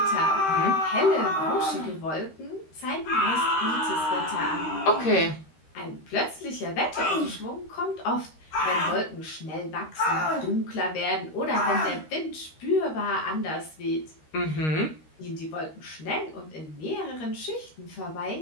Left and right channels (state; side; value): late; right; 13 ms